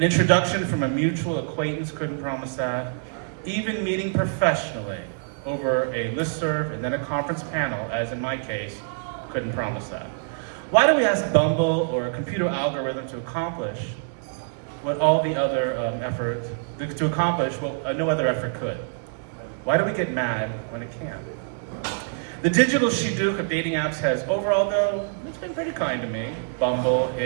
introduction from a mutual acquaintance couldn't promise that. Even meeting professionally over a listserv and then a conference panel, as in my case, couldn't promise that. Why do we ask Bumble or a computer algorithm to accomplish what all the other no other effort could? Why do we get mad when it can't? The digital shidduch of dating apps has overall, though, it's been pretty kind to me. Bumble,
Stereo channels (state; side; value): silent; left; digital silence